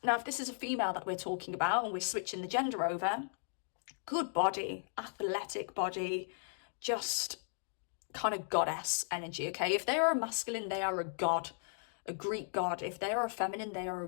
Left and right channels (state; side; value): silent; right; digital silence